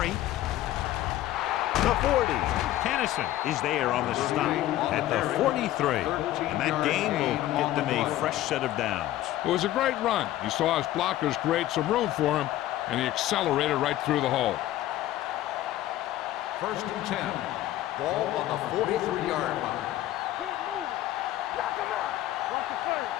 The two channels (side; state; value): right; quieter; 14.3 dB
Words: the 40. Kennison is there on the stop at the 43. And that gain will get them a fresh set of downs. It was a great run. He saw his blockers create some room for him, and he accelerated right through the hole. 1st and 10. Ball on the 43-yard line. Keep moving. Knock him out. Watch the play.